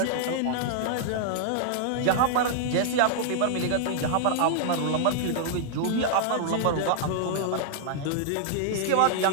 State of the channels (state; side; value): different; both; correlation -0.01